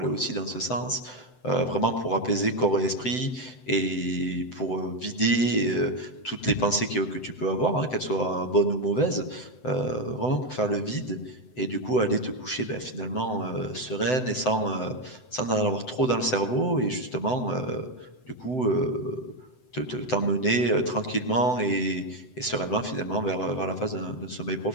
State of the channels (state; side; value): late; right; 7.9 ms